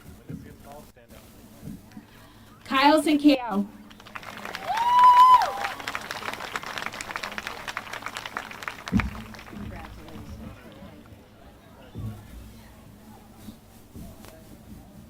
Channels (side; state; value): both; identical; correlation 1.00